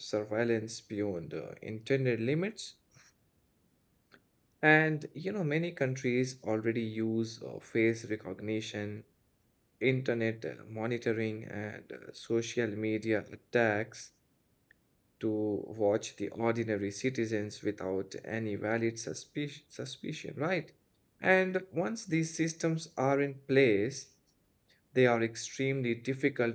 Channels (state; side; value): identical; both; correlation 1.00